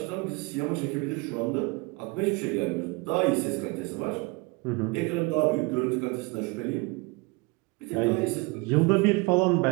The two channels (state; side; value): quieter; left; 26.7 dB